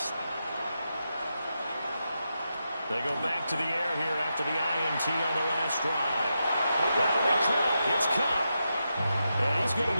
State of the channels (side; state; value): both; inverted; correlation -0.87